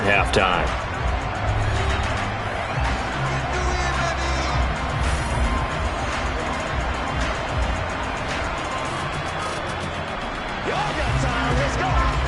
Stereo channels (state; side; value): identical; both; correlation 1.00